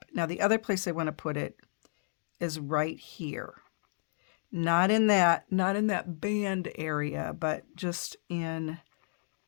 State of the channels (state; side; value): silent; right; digital silence